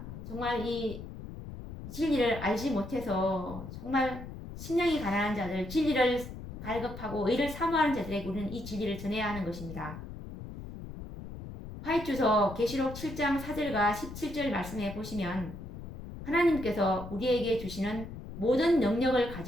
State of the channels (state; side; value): noise; left; rumble, 11 dB below the sound